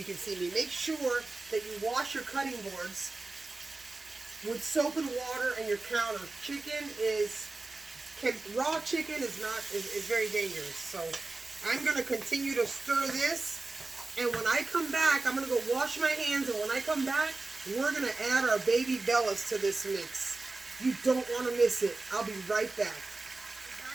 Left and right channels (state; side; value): quieter; left; 3.4 dB